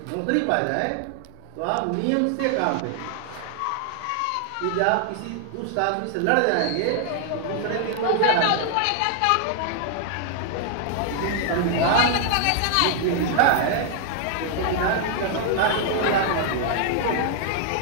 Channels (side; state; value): both; different; correlation 0.00